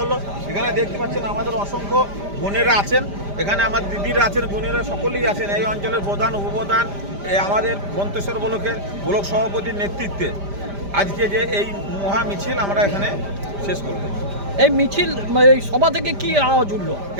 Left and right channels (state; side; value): late; left; 5.0 ms